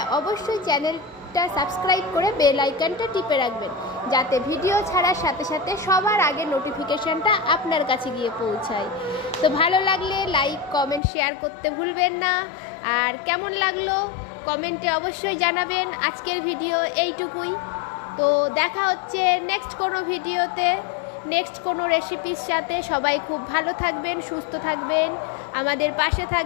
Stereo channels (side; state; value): right; drops out; at 11.0 s